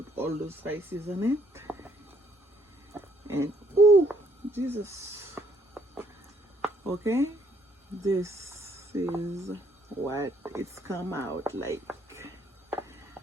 all those spices on it. And oh Jesus, okay, this is what it's come out like.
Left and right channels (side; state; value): both; normal; correlation 0.67